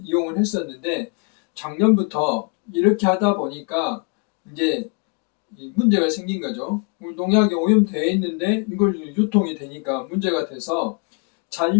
이용을 했었는데 작년부터 이렇게 하다 보니까 이제 문제가 생긴 거죠. 농약이 오염되어 있는데 이걸 유통이 되니까 문제가 돼서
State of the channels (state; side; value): quieter; right; 35.1 dB